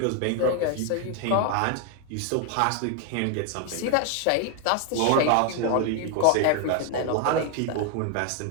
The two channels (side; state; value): both; different; correlation 0.01